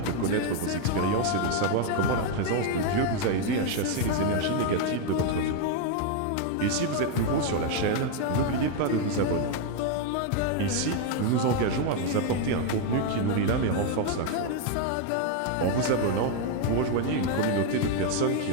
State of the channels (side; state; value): both; different; correlation 0.01